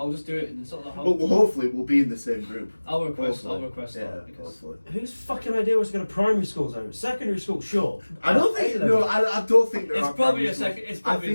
I'll just do it, and it's not that hard. Well, hopefully we'll be in the same group. I'll request Hopefully. that because hopefully. Whose fucking idea was to go to primary schools though? Secondary school, sure. I don't think. A-level. No, I don't think there it's are probably primary a schools. second. It's probably a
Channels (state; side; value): inverted; both; correlation -1.00